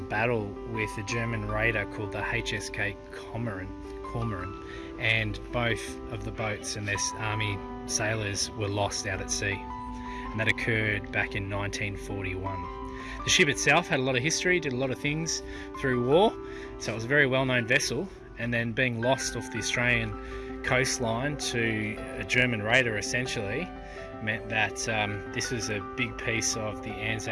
battle with a German raider called the HSK Cormoran, and both of the boats and their army sailors were lost out at sea, and that occurred back in 1941. The ship itself had a lot of history, did a lot of things through war, so it was a very well-known vessel, and then being lost off the Australian coastline to a German raider essentially meant that this was a big piece of the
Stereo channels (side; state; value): both; identical; correlation 1.00